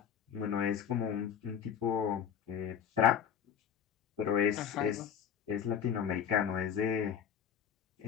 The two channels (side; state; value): right; quieter; 8.1 dB